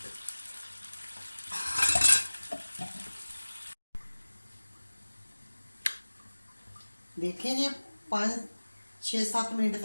देखें ये 5-6-7 मिनट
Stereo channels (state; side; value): inverted; both; correlation -1.00